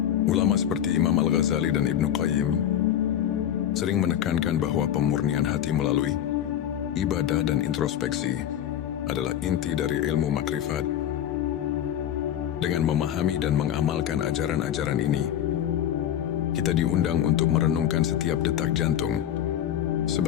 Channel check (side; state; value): right; quieter; 10.6 dB